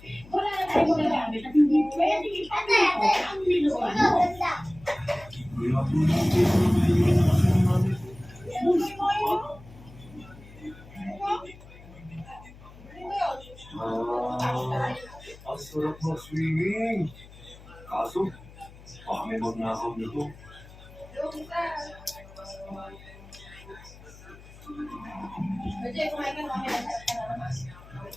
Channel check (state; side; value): noise; left; hum, 20 dB below the sound